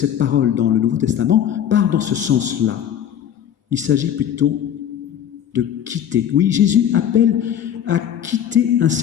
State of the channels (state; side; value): quieter; right; 9.7 dB